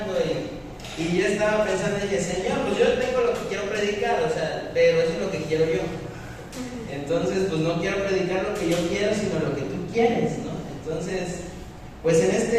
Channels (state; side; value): identical; both; correlation 1.00